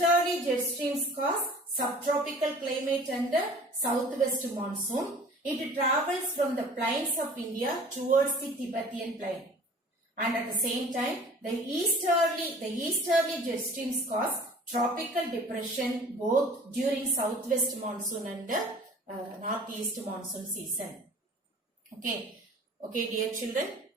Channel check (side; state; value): both; normal; correlation 0.47